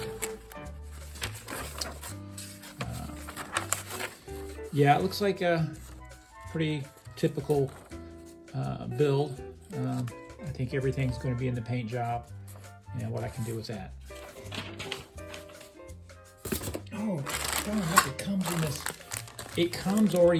in. Yeah, it looks like a pretty typical build. I think everything's going to be in the paint job and what I can do with that. Oh, look, it comes in this. It comes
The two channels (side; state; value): both; identical; correlation 1.00